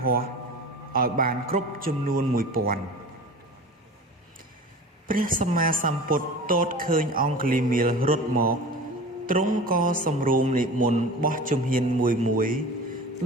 ហស្ថឲ្យបានគ្រប់ចំនួន 1000ព្រះសម្មាសម្ពុទ្ធទតឃើញអង្គលីមៀលរត់មកទ្រង់ក៏សម្រួមនិមន្តបោះជំហានមួយ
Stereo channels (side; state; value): both; normal; correlation 0.36